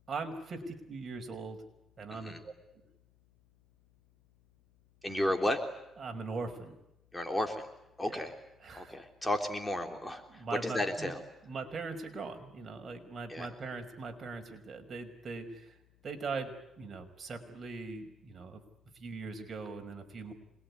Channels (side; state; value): left; noise; hum, 28 dB below the sound